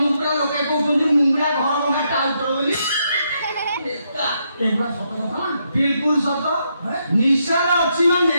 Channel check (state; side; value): inverted; both; correlation -0.78